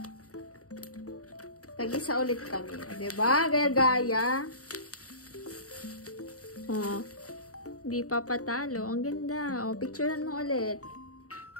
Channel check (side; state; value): right; late; 0.66 ms